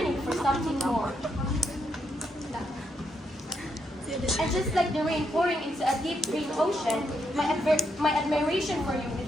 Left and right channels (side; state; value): both; normal; correlation 0.79